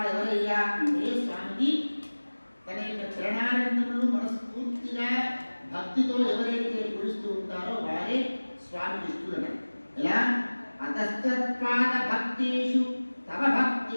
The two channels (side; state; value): both; inverted; correlation -1.00